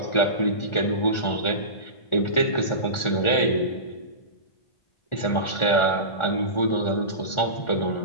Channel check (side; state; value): right; late; 1.4 ms